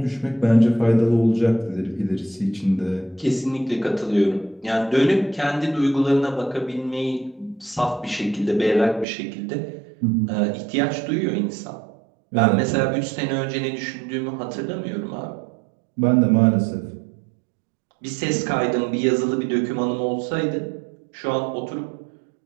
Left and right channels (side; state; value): left; drops out; at 9.1 s